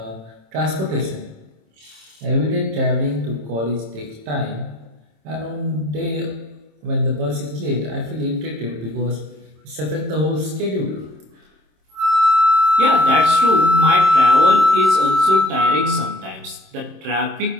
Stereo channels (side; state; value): left; late; 27 ms